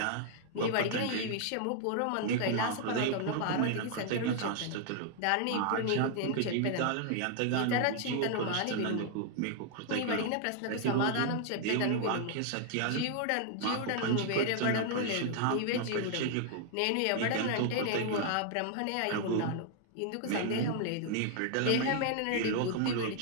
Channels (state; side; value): different; both; correlation 0.00